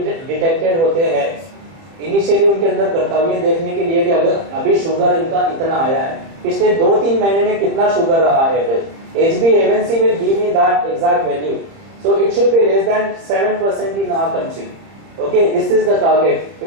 डिटेक्टेड होते हैं, इनिशियली उनके अंदर करता हूँ ये देखने के लिए कि अगर अभी शुगर इनका इतना आया है, पिछले 2-3 महीने में कितना शुगर रहा है average. HbA1c will give me that exact value. So it should be less than 7% in our country. Okay, this is the target.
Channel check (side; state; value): left; late; 30 ms